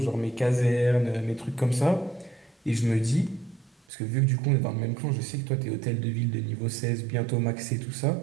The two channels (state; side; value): drops out; left; at 3.8 s